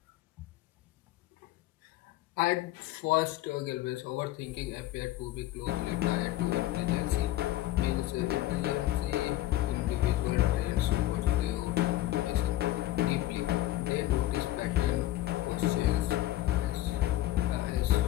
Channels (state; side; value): quieter; right; 15.3 dB